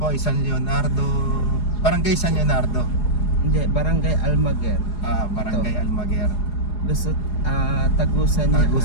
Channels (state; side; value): late; right; 4.8 ms